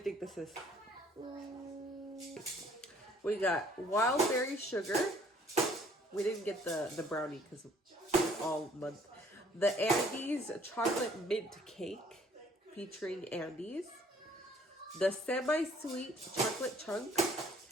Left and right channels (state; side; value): normal; both; correlation 0.59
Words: think this is? We got wild berry sugar. We didn't get the brownie because it's all month. The Andes chocolate mint cake featuring Andes. The semi-sweet chocolate chunk.